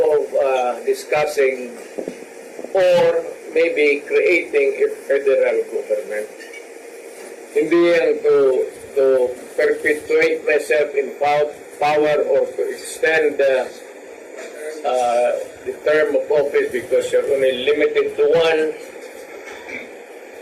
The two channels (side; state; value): both; identical; correlation 1.00